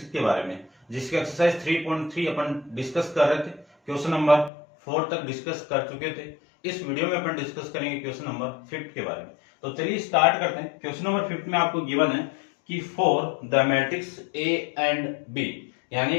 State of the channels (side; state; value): right; drops out; at 4.5 s